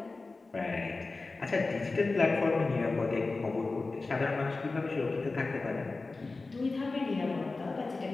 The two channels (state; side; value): quieter; right; 3.6 dB